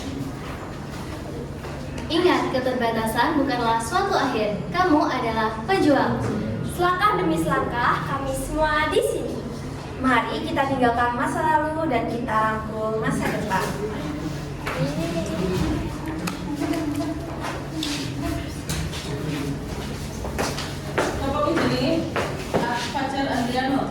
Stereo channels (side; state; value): both; identical; correlation 1.00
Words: Ingat, keterbatasan bukanlah suatu akhir. Kamu adalah pejuang. Selangkah demi selangkah, kami semua di sini. Mari kita tinggalkan masa lalu dan kita rangkul masa depan. Bapak ini pacar Adriano